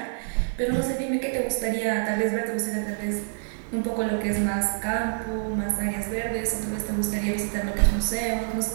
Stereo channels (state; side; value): silent; left; digital silence